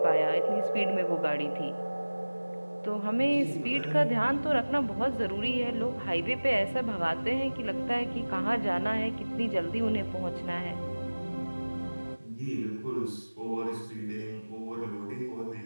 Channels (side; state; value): both; inverted; correlation -1.00